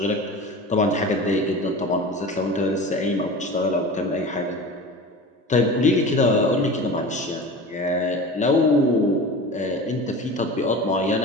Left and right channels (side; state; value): both; normal; correlation 0.34